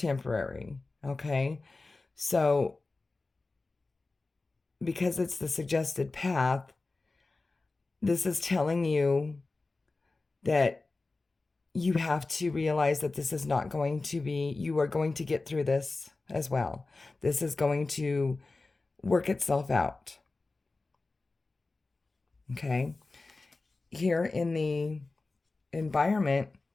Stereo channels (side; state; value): right; quieter; 3.5 dB